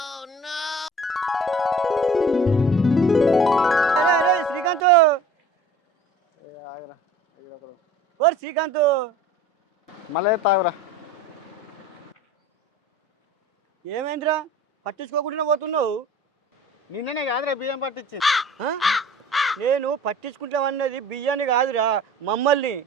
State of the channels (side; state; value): both; normal; correlation 0.44